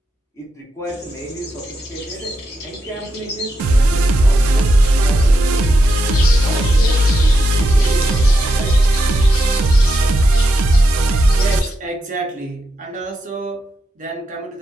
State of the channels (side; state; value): both; normal; correlation 0.85